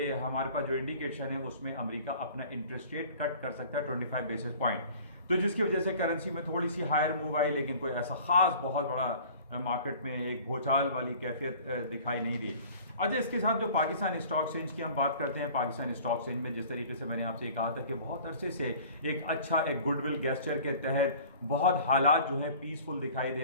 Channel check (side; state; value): both; inverted; correlation -0.47